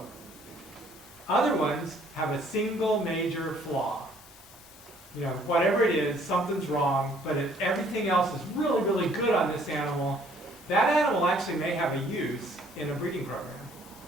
Other ones have a single major flaw. Whatever it is, something's wrong, but if everything else is really, really good on this animal, that animal actually may have a use in a breeding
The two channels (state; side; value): normal; both; correlation 0.60